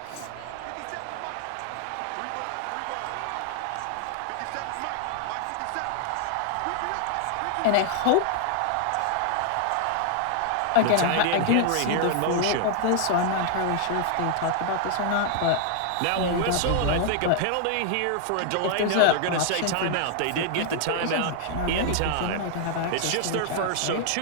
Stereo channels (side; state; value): both; different; correlation 0.00